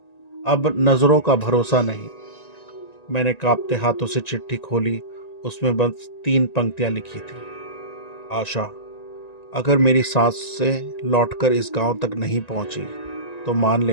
अब नजरों का भरोसा नहीं। मैंने कांपते हाथों से चिट्ठी खोली। उसमें बस 3 पंक्तियां लिखी थी। आशा, अगर मेरी सांस से लौटकर इस गांव तक नहीं पहुंची, तो मान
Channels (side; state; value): right; late; 1.9 ms